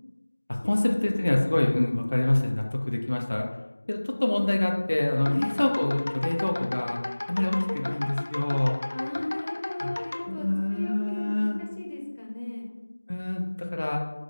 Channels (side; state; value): both; inverted; correlation -1.00